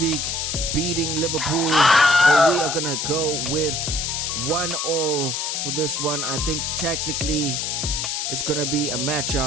beating Liverpool. So we are going to go with 1-1 for this one. I think tactically it's going to be a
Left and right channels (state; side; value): noise; left; hiss, 1 dB below the sound